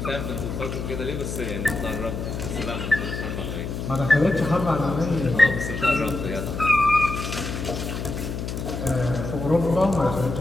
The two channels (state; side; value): noise; left; hum, 5 dB below the sound